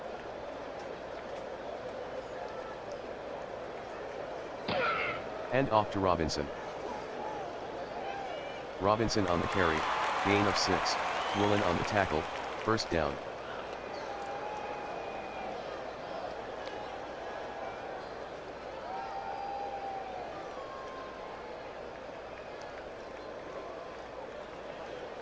Hand off to Robinson. Robinson on the carry, gain of 6, Woolen on the tackle, first down.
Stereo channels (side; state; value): both; identical; correlation 1.00